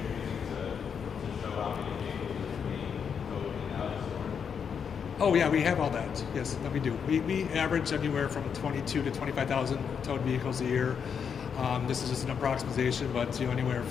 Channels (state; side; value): quieter; right; 7.0 dB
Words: using to show how many vehicles are being towed in and out of store? Oh yeah, we have all that. Yes, that we do. We average anywhere from 22 to 25,000 towed vehicles a year. This is just an approximation, but anywhere